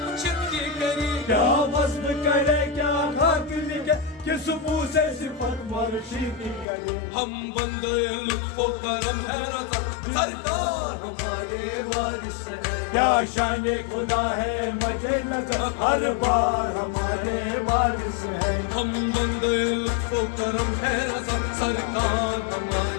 کی کرے کیا وصف کرے کیا خاک لکھے کس منہ سے صفت مرشد کی کرے ہم بندے لطف و کرم ہے رضا سرکار ہمارے وارث ہے کیا شان خدا ہے مد نظر ہر بار ہمارے وارث ہے ہم بندے لطف و کرم ہے رضا سرکار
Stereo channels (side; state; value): right; drops out; at 6.7 s